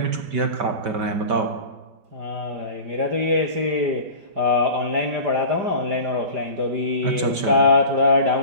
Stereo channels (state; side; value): late; left; 5.2 ms